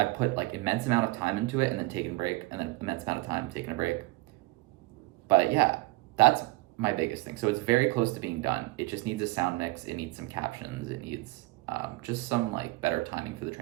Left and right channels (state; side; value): quieter; left; 21.6 dB